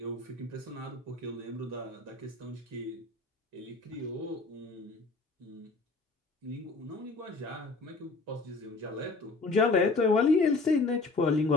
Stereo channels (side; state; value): right; quieter; 3.6 dB